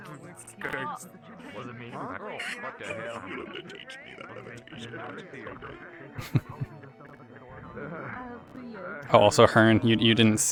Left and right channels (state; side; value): identical; both; correlation 1.00